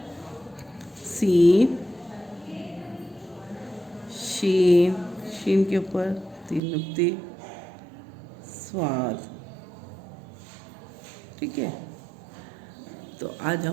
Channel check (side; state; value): left; drops out; at 6.6 s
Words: सीन शीन के ऊपर 3 नुक्ते, स्वाद। ठीक है, तो आज